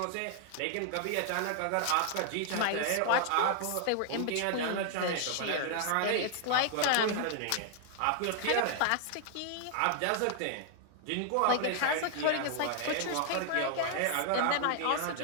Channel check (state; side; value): different; both; correlation 0.00